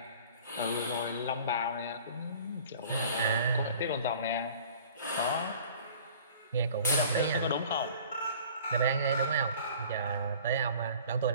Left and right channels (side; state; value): both; inverted; correlation -0.48